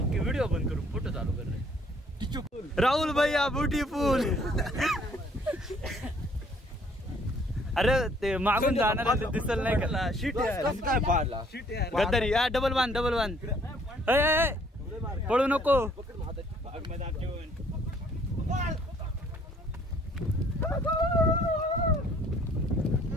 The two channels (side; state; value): both; normal; correlation 0.61